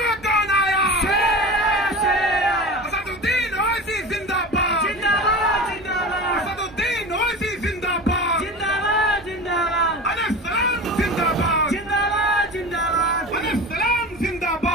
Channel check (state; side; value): normal; both; correlation 0.32